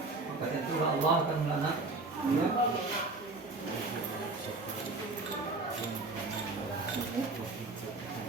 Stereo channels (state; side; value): quieter; left; 3.3 dB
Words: Maka tentu Allah akan melaknat. Ya.